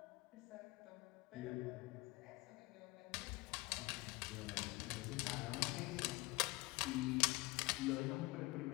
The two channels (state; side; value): quieter; right; 23.1 dB